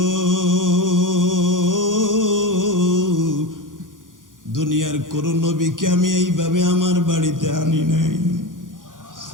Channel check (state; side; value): late; left; 0.89 ms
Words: দুনিয়ার কোন নবীকে আমি এইভাবে আমার বাড়িতে আনি নাই।